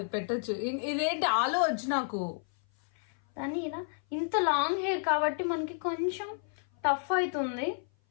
పెట్టచ్చు. ఇదేంటి ఆలు వచ్చి నాకు దాన్ని ఇలా. ఇంత లాంగ్ హెయిర్ కాబట్టి మనకి కొంచెం టఫ్ అవుతుంది.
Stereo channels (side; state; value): right; silent; 56 dB below the other